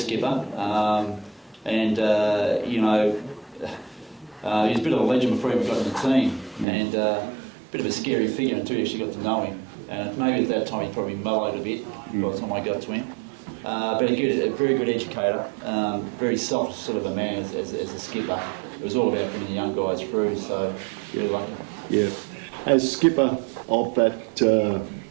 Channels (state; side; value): drops out; left; at 6.7 s